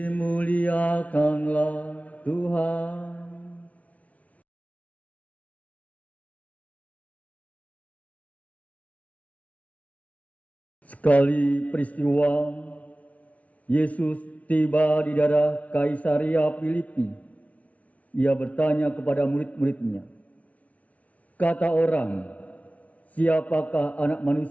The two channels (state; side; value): late; right; 0.068 ms